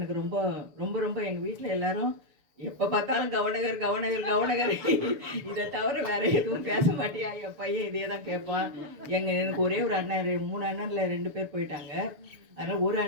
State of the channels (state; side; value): late; left; 7.0 ms